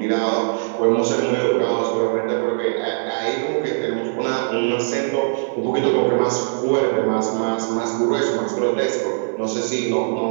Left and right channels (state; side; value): silent; left; digital silence